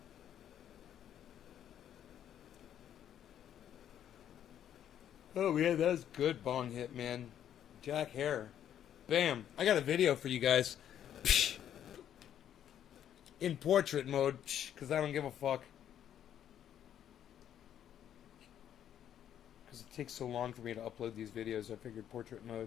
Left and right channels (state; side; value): quieter; right; 10.2 dB